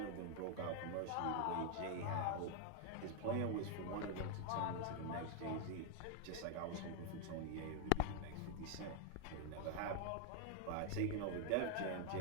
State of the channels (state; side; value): different; both; correlation 0.00